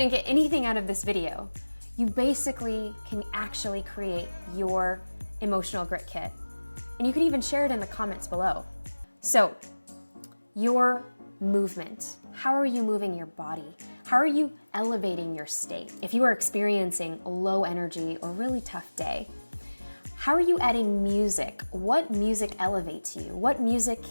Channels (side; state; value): both; inverted; correlation -1.00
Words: get anything out of this video, you basically can actually create your emotional grit kit. And you can even share it in the comments below. So, your movement. How are you moving your body? How are you elevating your state? If you are experiencing a low energy or really tough day, how are you adding music? What music elevates you? What music